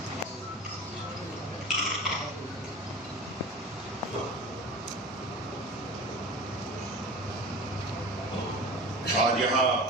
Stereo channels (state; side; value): normal; both; correlation 0.34